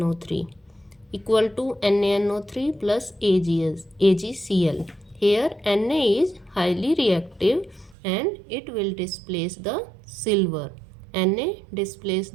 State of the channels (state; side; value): drops out; left; at 8.0 s